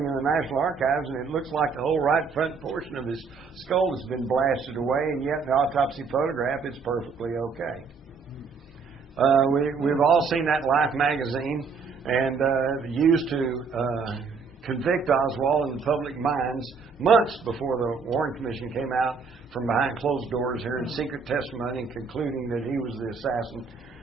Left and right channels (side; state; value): left; quieter; 5.2 dB